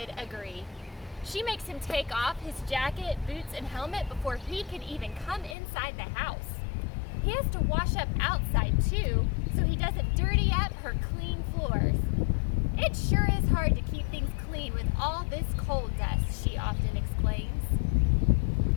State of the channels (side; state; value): right; drops out; at 5.6 s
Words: agree. She makes him take off his jacket, boots, and helmet before he can even come inside the house. He has to wash up outside too, so he doesn't dirty up her clean floors. It sure is hard to keep things clean with all this coal dust, she often explains.